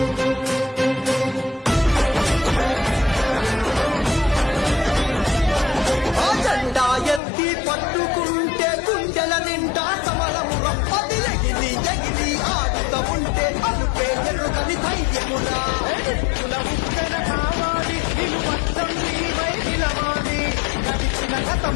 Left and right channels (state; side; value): drops out; right; at 7.2 s